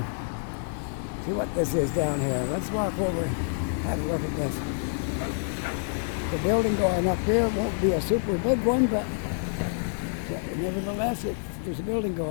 See what this is down here. Let's walk over and have a look at this. The building going up here won't be a super big one, but nevertheless, there's a building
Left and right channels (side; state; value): right; silent; digital silence